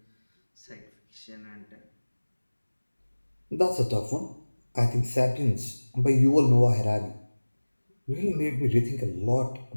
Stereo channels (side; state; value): both; inverted; correlation -1.00